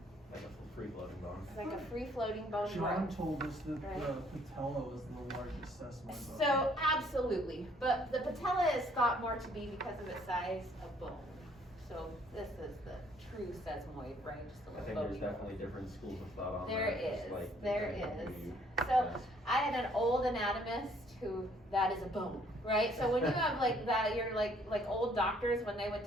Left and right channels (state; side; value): normal; both; correlation 0.63